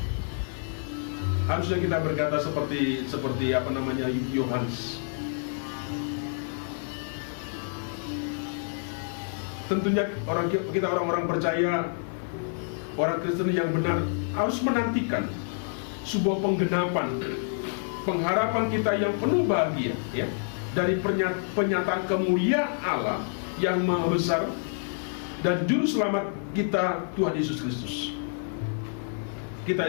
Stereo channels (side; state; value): right; silent; digital silence